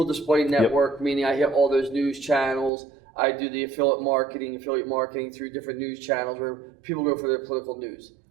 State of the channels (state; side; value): drops out; left; at 2.7 s